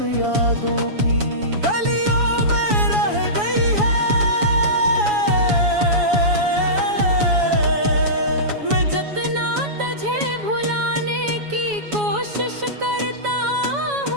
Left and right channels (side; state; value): left; late; 7.1 ms